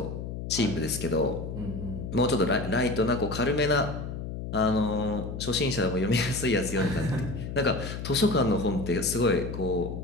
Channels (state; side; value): noise; left; hum, 7 dB below the sound